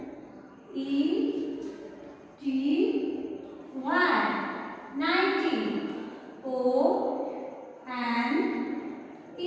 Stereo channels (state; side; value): identical; both; correlation 1.00